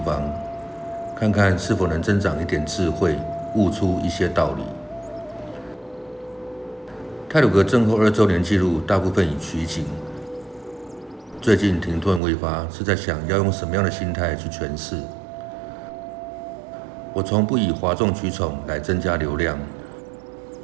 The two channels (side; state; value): left; drops out; at 12.2 s